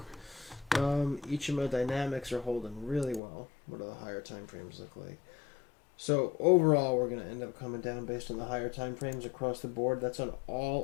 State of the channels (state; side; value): drops out; right; at 3.2 s